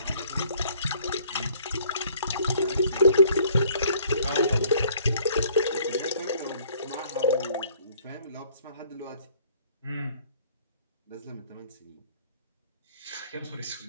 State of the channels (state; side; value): inverted; both; correlation -0.58